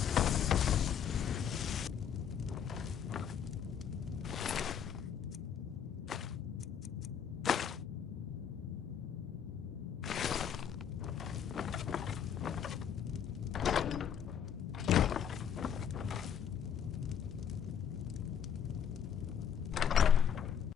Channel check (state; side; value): quieter; right; 8.3 dB